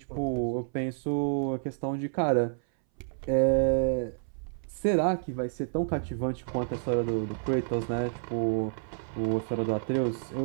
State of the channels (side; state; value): left; silent; 58 dB below the other